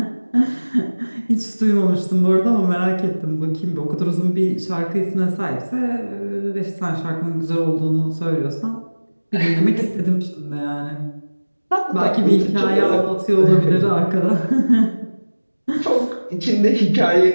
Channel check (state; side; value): inverted; both; correlation -1.00